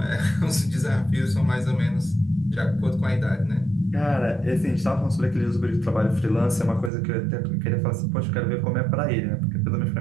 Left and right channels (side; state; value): left; drops out; at 6.9 s